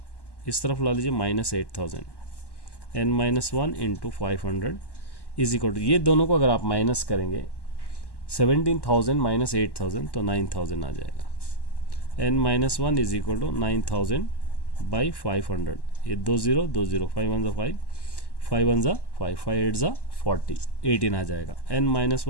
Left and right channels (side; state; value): right; late; 1.1 ms